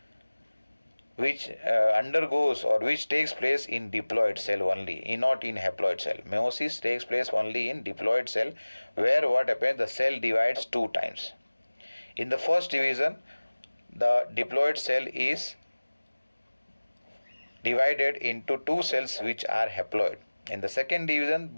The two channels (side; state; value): both; inverted; correlation -1.00